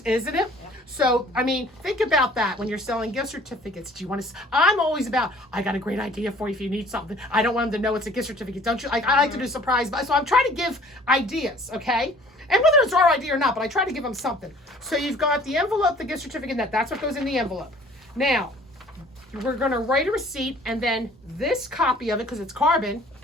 isn't it? Yep. So, I mean, think about that when you're selling gift certificates. Do you want to? I'm always about, I got a great idea for you if you need something. I don't want them to know it's a gift certificate. Don't you? I like to do surprise, so I'm trying to give ideas, okay? And whether it's our idea or not, but I try to give them something. So you've got the envelope, the gift certificate, that's what goes in the envelope. Now, we're going to write a receipt, and then this copy of it, because it's carbon,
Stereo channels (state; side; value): normal; both; correlation 0.53